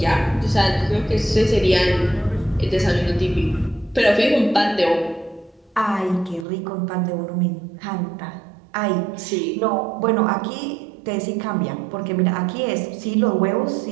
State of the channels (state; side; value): drops out; left; at 6.5 s